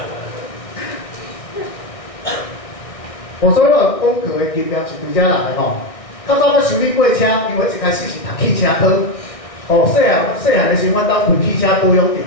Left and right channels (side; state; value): right; late; 1.6 ms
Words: 所以我讲课的经验是对遮来吼。较早要修理过车，因为一开始是读汽车科。哦，细汉的时候，阮兜开汽车保养店，